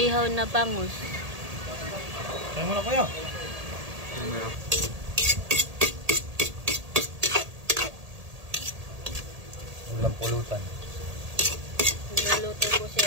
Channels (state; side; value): late; left; 1.8 ms